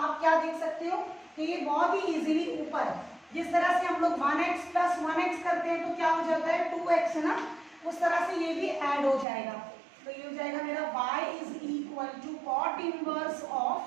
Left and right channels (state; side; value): drops out; left; at 9.2 s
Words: क्या देख सकते हो कि ये बहुत ही इजीली ऊपर, जिस तरह से हम लोग 1x प्लस 1x करते हैं तो क्या हो जाता है 2x, है ना, उस तरह से ये भी ऐड हो जाएगा। तो ये हो जाएगा मेरा y is equal to cot inverse